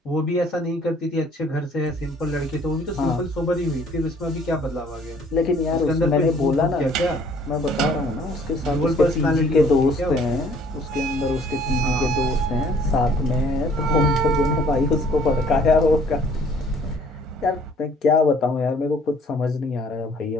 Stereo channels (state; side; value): normal; both; correlation 0.58